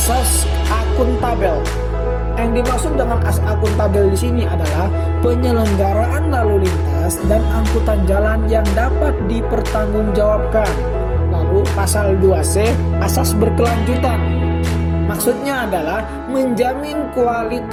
akuntabel. Yang dimaksud dengan asas akuntabel di sini adalah penyelenggaraan lalu lintas dan angkutan jalan yang dapat dipertanggungjawabkan. Lalu, pasal 2C, asas berkelanjutan. Maksudnya adalah menjamin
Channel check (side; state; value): both; identical; correlation 1.00